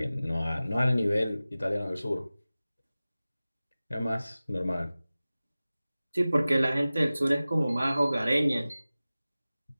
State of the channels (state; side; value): inverted; both; correlation -0.97